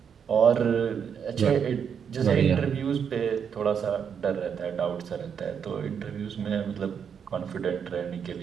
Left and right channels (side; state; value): left; quieter; 7.3 dB